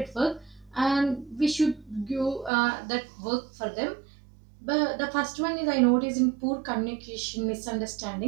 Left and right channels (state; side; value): drops out; left; at 2.5 s